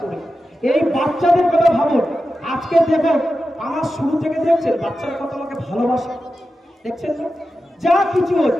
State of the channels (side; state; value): both; normal; correlation 0.92